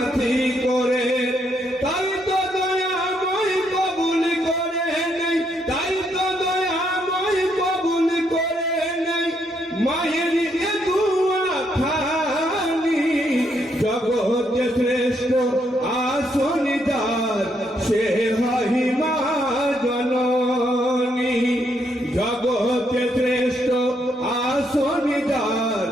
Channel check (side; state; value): both; normal; correlation 0.75